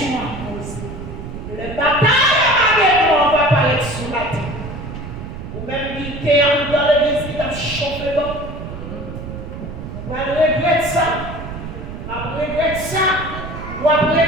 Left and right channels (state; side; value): noise; right; rumble, 9 dB below the sound